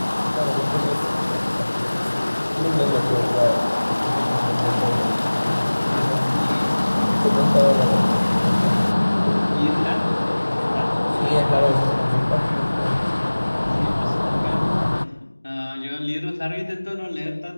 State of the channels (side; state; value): both; inverted; correlation -1.00